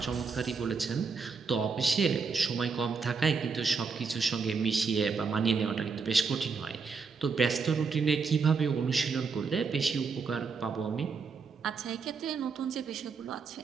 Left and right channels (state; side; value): quieter; left; 5.1 dB